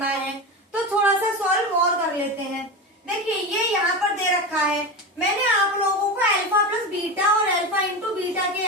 है, तो थोड़ा सा सॉल्व और कर लेते हैं। देखिए ये यहाँ पर दे रखा है, मैंने आप लोगों को अल्फा प्लस बीटा और अल्फा इंटू बीटा के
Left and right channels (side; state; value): both; normal; correlation 0.21